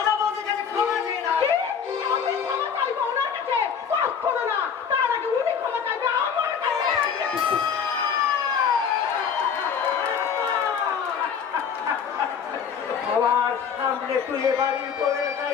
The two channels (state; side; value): quieter; right; 7.0 dB